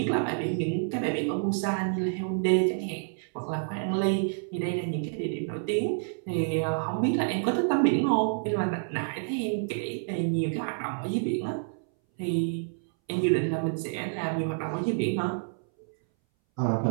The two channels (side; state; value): left; silent; 59 dB below the other